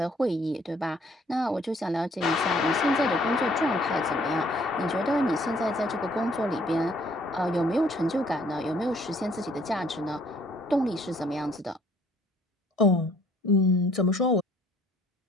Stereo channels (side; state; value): both; normal; correlation 0.61